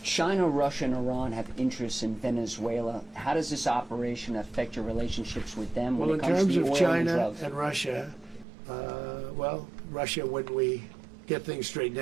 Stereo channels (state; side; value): drops out; left; at 8.5 s